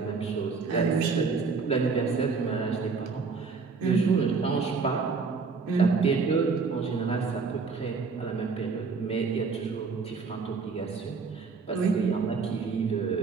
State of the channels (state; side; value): quieter; left; 4.8 dB